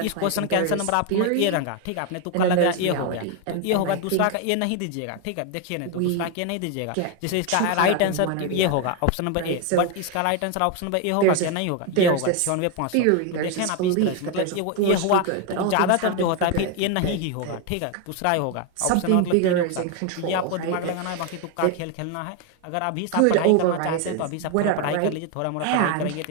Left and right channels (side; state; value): both; different; correlation 0.01